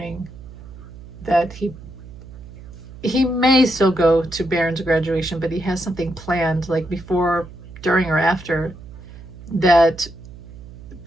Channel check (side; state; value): right; noise; hum, 16 dB below the sound